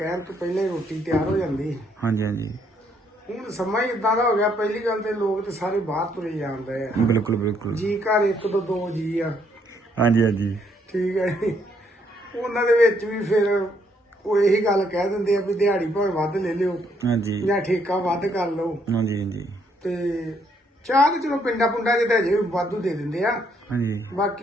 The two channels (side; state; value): both; normal; correlation 0.71